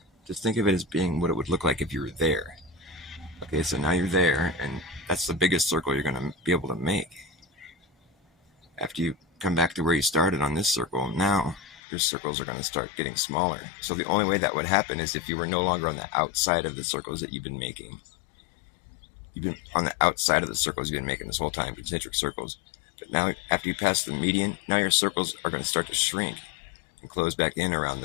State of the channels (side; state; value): right; drops out; at 11.8 s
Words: just think of it as being what it would look like if you were there. Okay, so now you're there, and that's the biggest circle you're going to be able to make. After you come back to where you started on this circle, now your circles are going to start getting smaller. So the only way that would happen is if you were no longer on the outside of the circles that you've been making. You've been on the outside of the circles you've been making this whole time, concentric circles. But now, after you pass the median, now your circles are going to start to shrink and close back in around